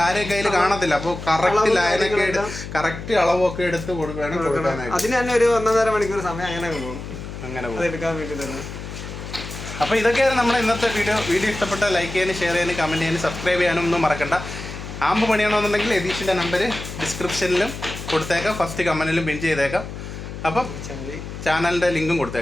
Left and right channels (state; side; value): noise; left; hum, 10 dB below the sound